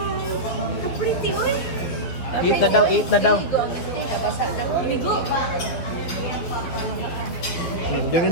So pretty, oy! Eat na daw, eat na daw. Inigo! Doon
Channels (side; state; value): right; late; 12 ms